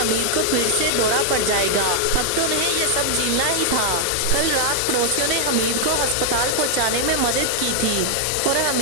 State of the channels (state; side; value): different; both; correlation 0.00